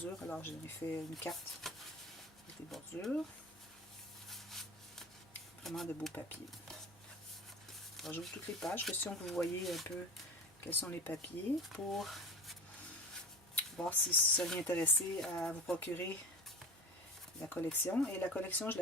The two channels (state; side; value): normal; both; correlation 0.32